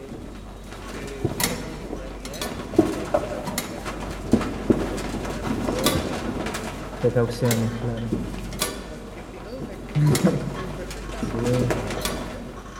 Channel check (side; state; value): both; identical; correlation 1.00